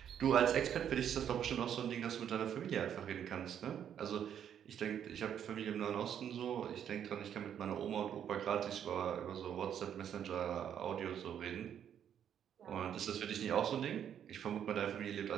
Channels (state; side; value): quieter; left; 9.2 dB